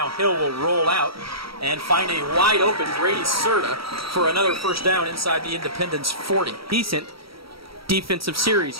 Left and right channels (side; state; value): left; late; 0.75 ms